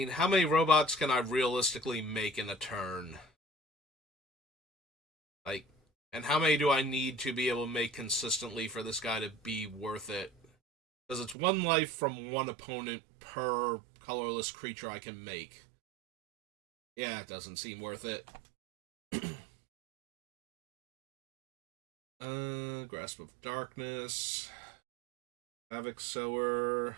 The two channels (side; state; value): left; drops out; at 11.4 s